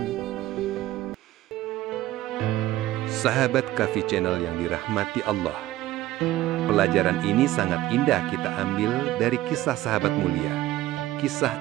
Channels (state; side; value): quieter; left; 15.6 dB